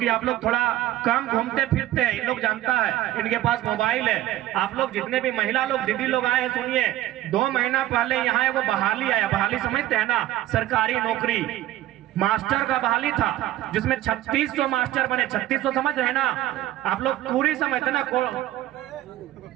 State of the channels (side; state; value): left; quieter; 14.5 dB